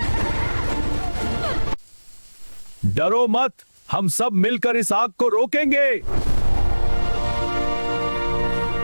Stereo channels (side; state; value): both; inverted; correlation -1.00